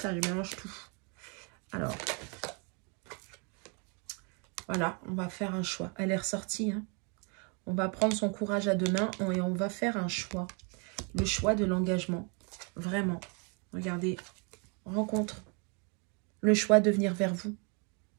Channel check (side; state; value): left; quieter; 35.3 dB